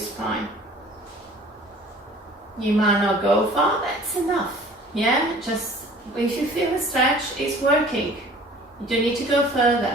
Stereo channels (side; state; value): both; normal; correlation 0.49